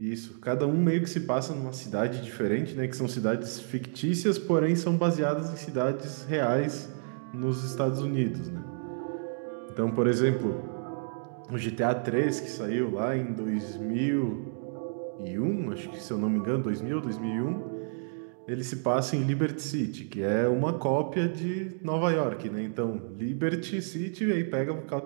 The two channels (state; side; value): silent; left; digital silence